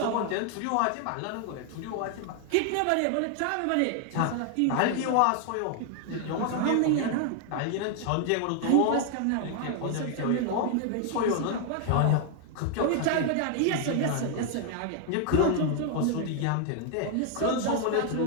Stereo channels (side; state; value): both; different; correlation 0.00